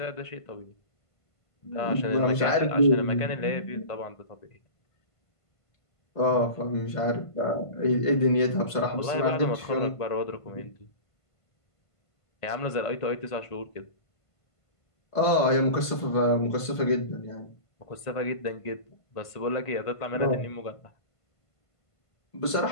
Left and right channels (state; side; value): late; right; 1.5 ms